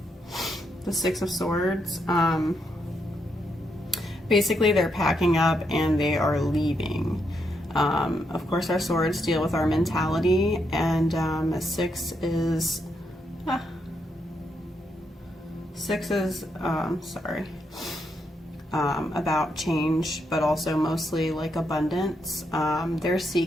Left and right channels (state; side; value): normal; both; correlation 0.79